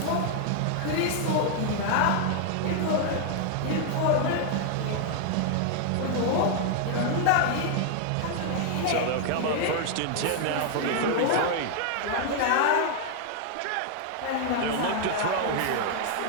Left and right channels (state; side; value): different; both; correlation 0.00